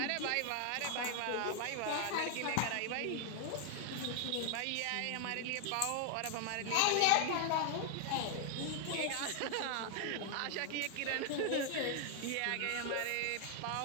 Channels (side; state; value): both; different; correlation 0.00